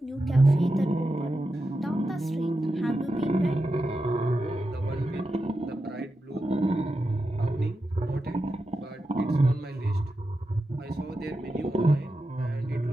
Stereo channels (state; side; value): normal; both; correlation 0.90